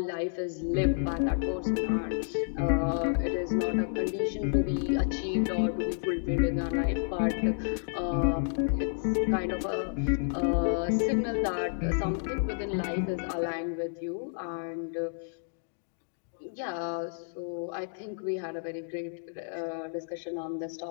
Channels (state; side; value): silent; right; digital silence